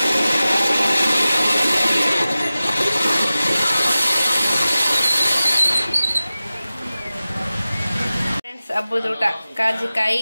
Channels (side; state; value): both; inverted; correlation -0.96